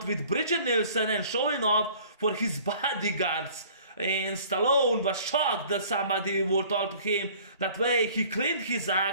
with Bridget Nielsen and showing off for his bodyguards. And Stallone was shocked that somebody would talk to him that way. He cleaned his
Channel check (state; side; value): inverted; both; correlation -0.51